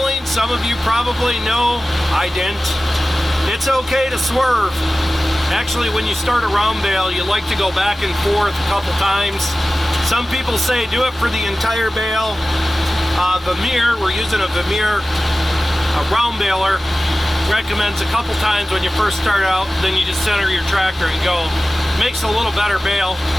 some of you probably know, I didn't. It's okay to swerve. Actually, when you start a round bale, you like to go back and forth a couple times. Some people say do it for the entire bale. Vemeer, we're using a Vemeer round baler, recommends a couple times when you first start out, then you just center your tractor and go. Makes a little better bale.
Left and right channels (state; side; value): normal; both; correlation 0.96